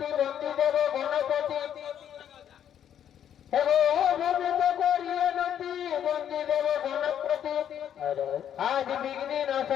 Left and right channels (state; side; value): quieter; right; 9.6 dB